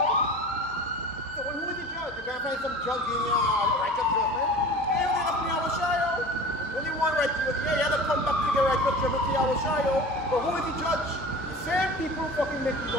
So who is the judge? You can't find some judge in your righteous judgment. Hey, you have to be our yo. When you want right, you have to come back to the righteous judgment to our yo. But who is the judge? The same people fucking make the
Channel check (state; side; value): normal; both; correlation 0.38